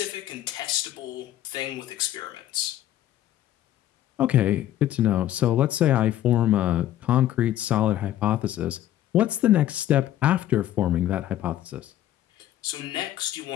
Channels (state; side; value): quieter; right; 12.8 dB